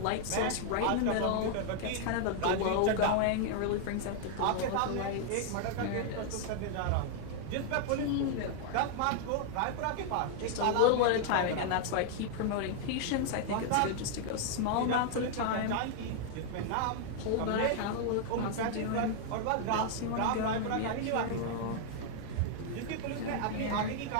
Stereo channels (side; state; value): both; different; correlation 0.00